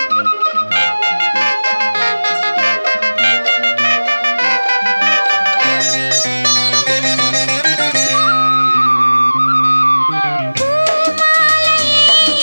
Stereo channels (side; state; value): both; inverted; correlation -1.00